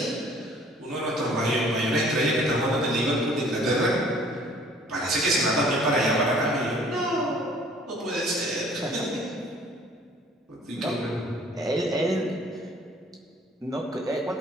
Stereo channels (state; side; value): normal; both; correlation 0.55